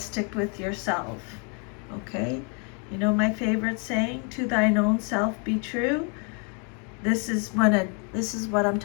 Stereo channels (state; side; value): quieter; right; 37.0 dB